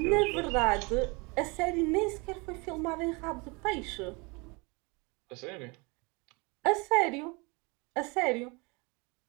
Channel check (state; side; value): quieter; left; 28.5 dB